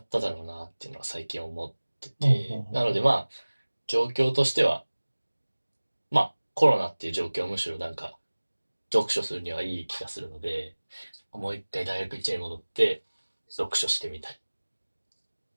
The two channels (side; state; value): both; inverted; correlation -1.00